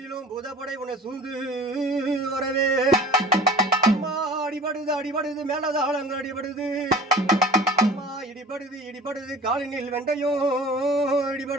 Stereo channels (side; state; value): both; normal; correlation 0.42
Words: பூதப்படை உன்னை சூழ்ந்து வரவே அம்மா அடிபடுது மேலதாளங்கள் அடிபடுது அம்மா இடிபடுது காலினில் வெண்டையும்